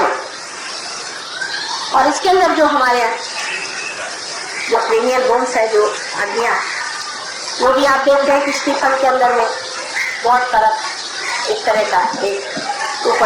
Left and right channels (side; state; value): both; identical; correlation 1.00